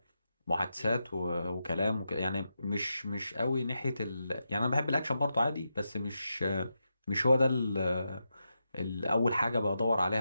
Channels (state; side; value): inverted; both; correlation -0.87